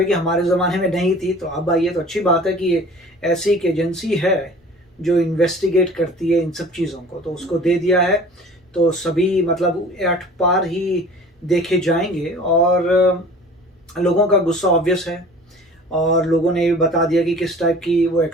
कि हमारे ज़माने में नहीं थी तो अब आई है। तो अच्छी बात है कि ऐसी एक एजेंसी है जो इन्वेस्टिगेट करती है इन सब चीज़ों को, तो उसको दे दिया है। तो सभी मतलब एट पार ही देखे जाएंगे, और लोगों का गुस्सा ऑब्वियस है, और लोगों ने ये बता दिया कि किस टाइप की वो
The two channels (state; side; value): normal; both; correlation 0.45